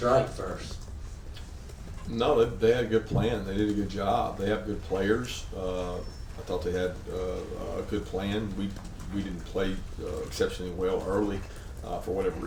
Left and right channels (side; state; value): both; identical; correlation 1.00